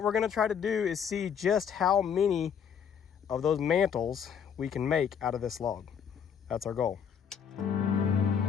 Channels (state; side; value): quieter; right; 7.7 dB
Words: we're gonna try to do is see just how many of those mantles we can make out of this log. That's our goal.